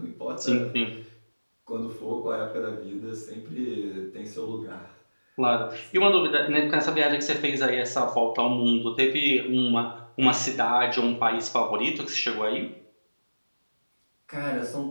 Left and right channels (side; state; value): both; inverted; correlation -1.00